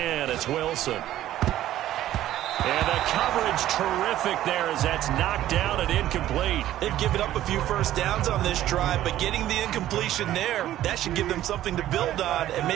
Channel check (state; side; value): quieter; left; 13.3 dB